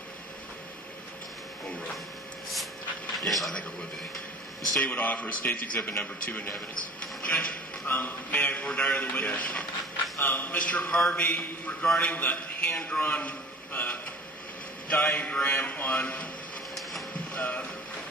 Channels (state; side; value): normal; both; correlation 0.42